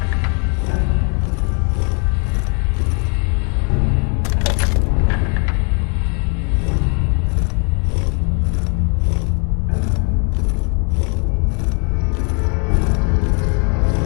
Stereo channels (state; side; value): quieter; right; 37.3 dB